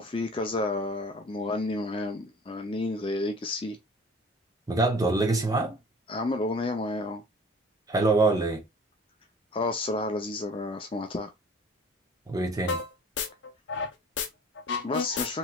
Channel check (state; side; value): normal; both; correlation 0.47